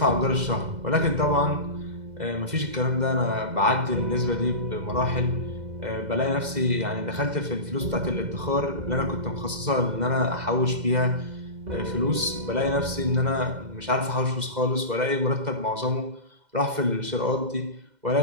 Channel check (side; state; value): left; late; 2.0 ms